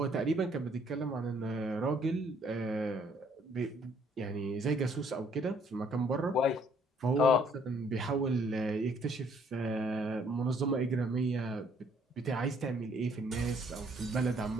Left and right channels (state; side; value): normal; both; correlation 0.64